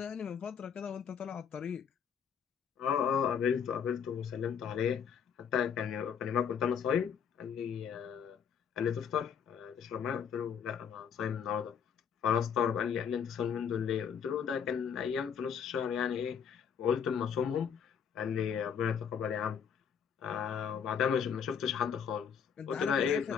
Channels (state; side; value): quieter; right; 7.5 dB